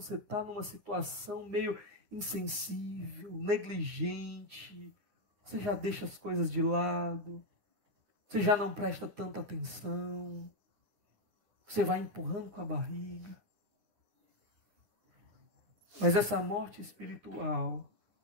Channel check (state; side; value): late; left; 9.8 ms